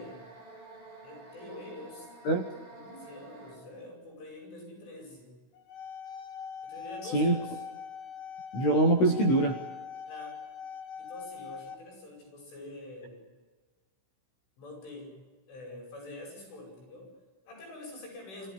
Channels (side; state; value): right; late; 16 ms